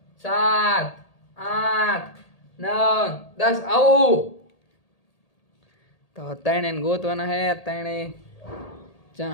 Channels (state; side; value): late; right; 1.8 ms